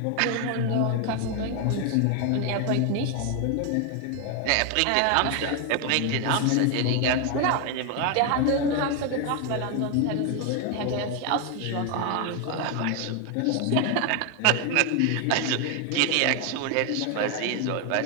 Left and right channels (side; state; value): both; different; correlation 0.01